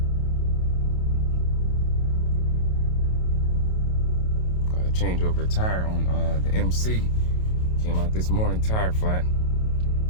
Gotta change over the tire on the MC. Came out this morning, tire flat.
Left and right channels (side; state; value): right; late; 28 ms